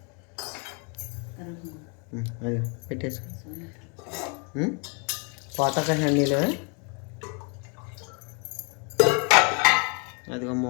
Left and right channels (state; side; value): quieter; right; 34.6 dB